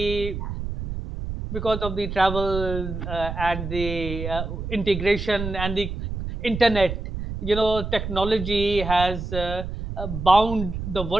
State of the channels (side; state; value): right; noise; rumble, 6 dB below the sound